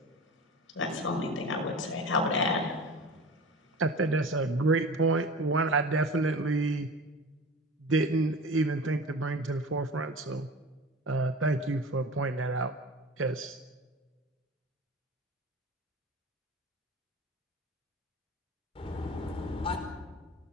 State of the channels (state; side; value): normal; both; correlation 0.35